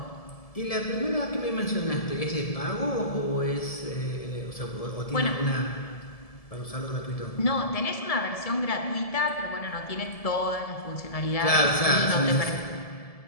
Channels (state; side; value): late; right; 1.7 ms